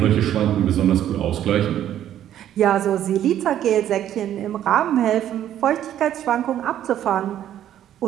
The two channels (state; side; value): quieter; left; 11.2 dB